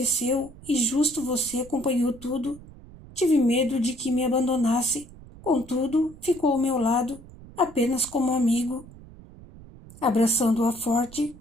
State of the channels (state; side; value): noise; right; rumble, 19 dB below the sound